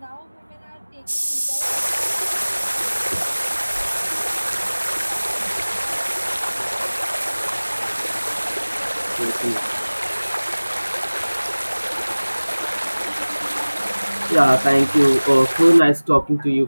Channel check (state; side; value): inverted; both; correlation -1.00